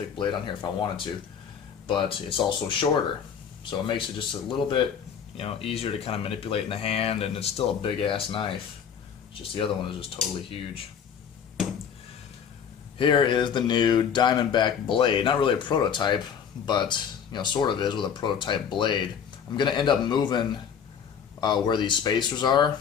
blade on here if I wanted to. But it's also shorter. So it makes it just a little bit, you know, easier to kind of manipulate in the hand, and it's still a big-ass knife. It's just the other one is just totally huge. Here is the new Diamondback blade. Not really a prototype, but you know, sort of is with a prototype blade. I'm going to end up moving where these spacers are.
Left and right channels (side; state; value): right; quieter; 7.5 dB